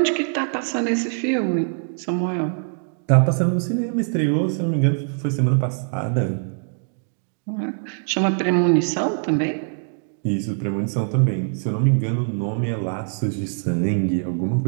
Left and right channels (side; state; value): left; silent; 64 dB below the other